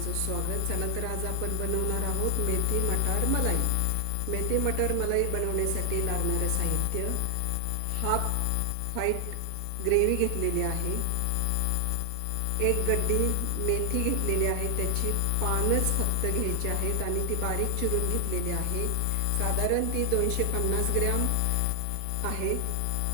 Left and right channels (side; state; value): both; different; correlation 0.00